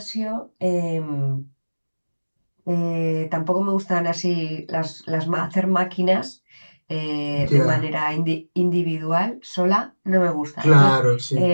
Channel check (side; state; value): both; inverted; correlation -1.00